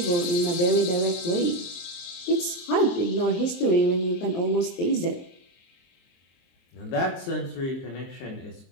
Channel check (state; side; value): late; right; 23 ms